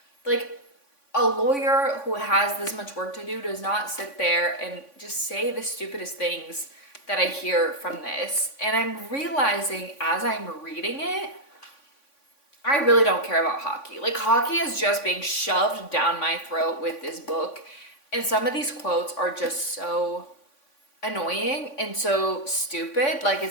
A lawyer who has this much work to do does not sit there and just say the stupidest things that I hear from this. And I'm realizing as I'm reading it, I really don't care about hockey. Hockey is just being shoved down my throat with this book. And some of these quotes are just so annoying and so stupid.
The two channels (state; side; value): late; right; 3.5 ms